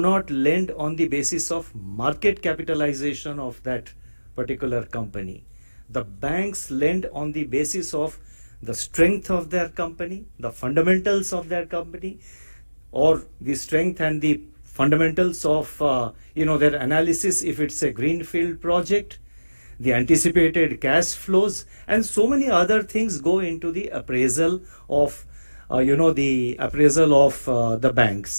lend on the basis of market capitalization of that particular company. The banks lend on the basis of the strength of their company, the fundamentals of their company, or the strength and the fundamentals of their analysis if it's a greenfield project, the anticipated cash flows, and so many other things go into the appraisal of the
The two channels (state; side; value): inverted; both; correlation -1.00